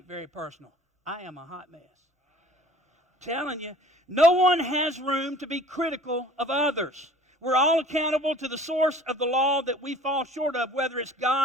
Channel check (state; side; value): normal; both; correlation 0.49